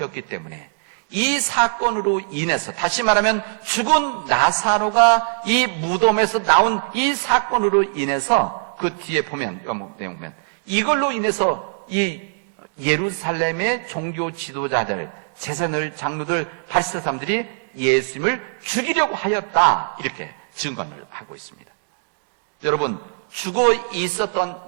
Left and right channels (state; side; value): silent; left; digital silence